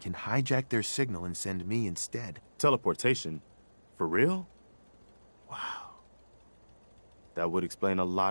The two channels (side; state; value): both; inverted; correlation -1.00